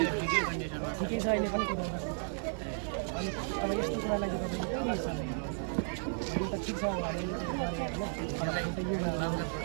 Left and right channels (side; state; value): left; silent; 55 dB below the other